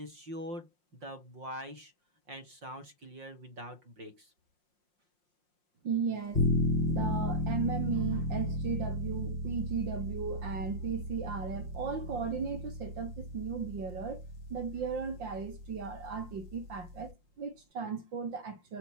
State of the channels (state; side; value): late; left; 5.6 ms